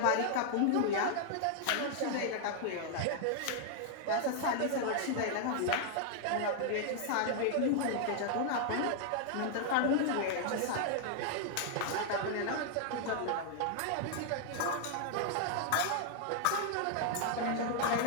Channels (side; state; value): both; different; correlation 0.00